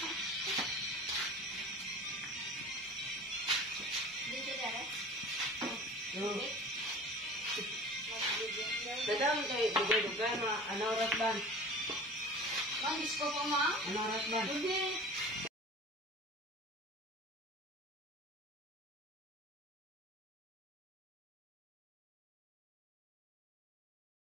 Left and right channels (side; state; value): both; normal; correlation 0.40